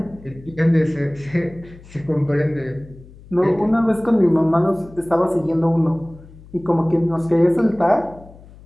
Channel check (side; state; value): left; noise; hum, 21 dB below the sound